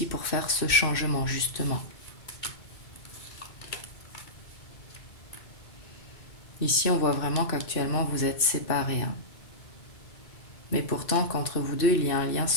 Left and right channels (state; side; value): late; right; 2.6 ms